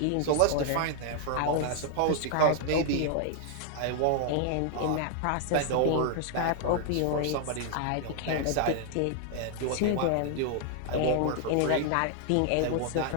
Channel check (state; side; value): different; both; correlation 0.00